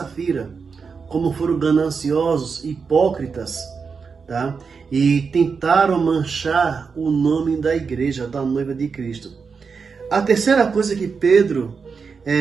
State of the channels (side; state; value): left; quieter; 5.4 dB